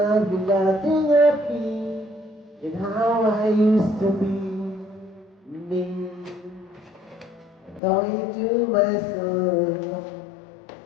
you got in your feet in how I used to be me. Talking to myself,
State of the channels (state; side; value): drops out; right; at 7.8 s